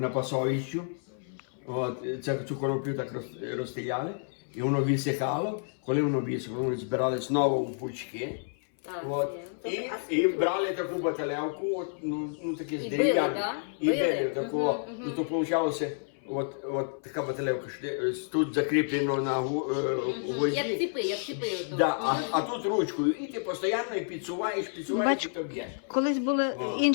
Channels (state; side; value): silent; right; 58 dB below the other